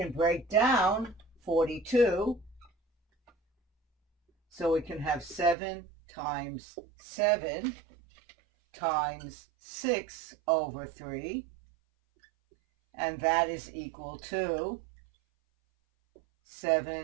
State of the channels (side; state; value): left; drops out; at 5.6 s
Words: break down 42. So we can have 7 times 7 times 6 over 3. And that is equal to